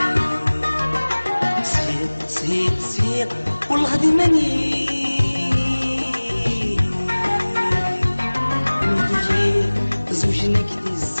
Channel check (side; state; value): both; inverted; correlation -1.00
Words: سير سير سير والغدي ماني